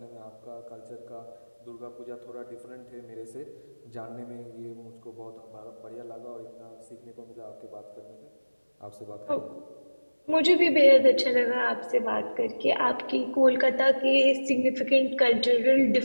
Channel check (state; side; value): inverted; both; correlation -1.00